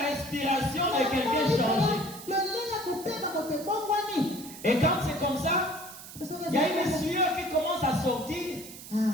respiration de quelqu'un changer. Et quand c'est comme ça, il y a une sueur qui commence à sortir.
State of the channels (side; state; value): right; noise; hiss, 14 dB below the sound